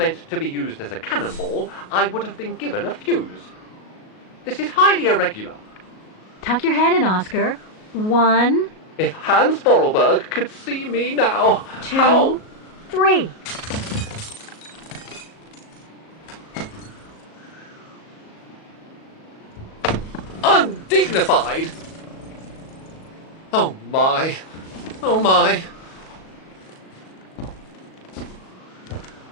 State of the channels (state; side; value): late; right; 37 ms